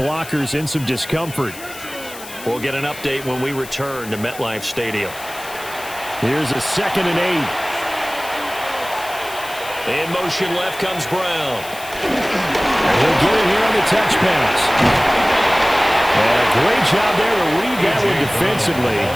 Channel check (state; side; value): noise; left; hiss, 15 dB below the sound